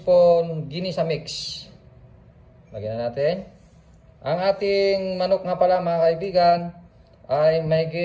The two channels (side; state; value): both; identical; correlation 1.00